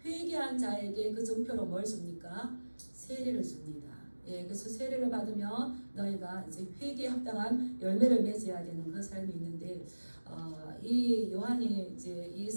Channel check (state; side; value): inverted; both; correlation -1.00